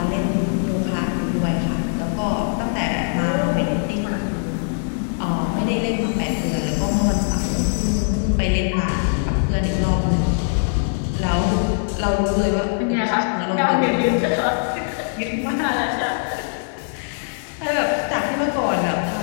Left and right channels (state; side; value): silent; right; 60 dB below the other